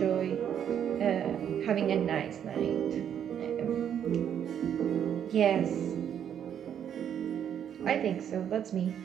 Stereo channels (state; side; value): quieter; left; 9.1 dB